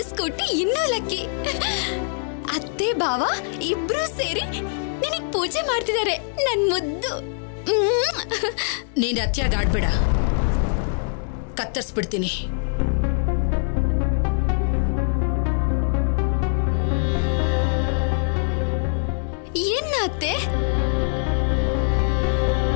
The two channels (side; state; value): right; silent; digital silence